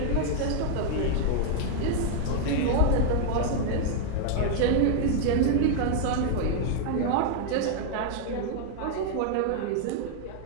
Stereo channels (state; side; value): different; both; correlation 0.00